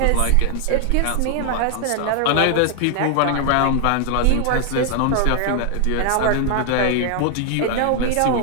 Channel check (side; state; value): both; different; correlation 0.00